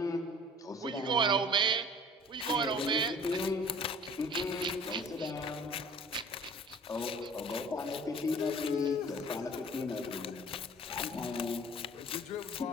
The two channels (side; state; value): both; normal; correlation 0.47